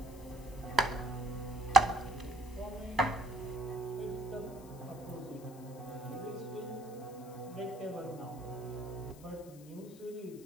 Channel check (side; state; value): left; noise; hiss, 22 dB below the sound